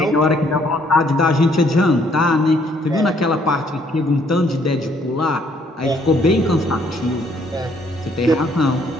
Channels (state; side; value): normal; both; correlation 0.66